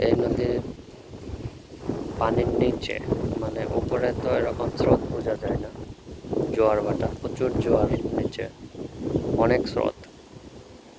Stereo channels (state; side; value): identical; both; correlation 1.00